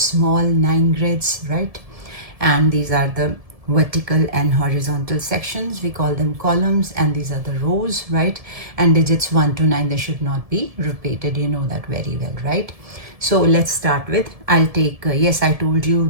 9 grids, right? And these are the vertical and horizontal sections. We call them columns, and these are the rows, right? And digits 1 to 9, they should not be repeated. You know that very well, right? So let's start with, I'll take, yes, I told you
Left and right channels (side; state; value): left; late; 1.7 ms